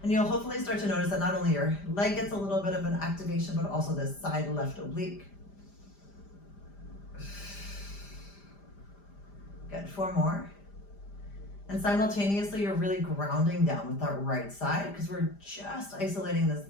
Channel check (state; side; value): late; right; 5.0 ms